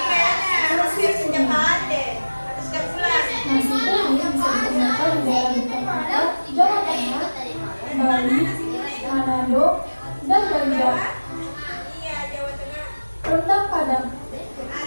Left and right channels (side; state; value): both; inverted; correlation -1.00